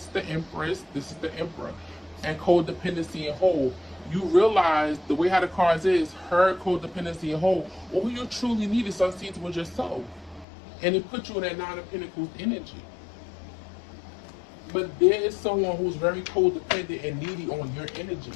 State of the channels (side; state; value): right; drops out; at 10.5 s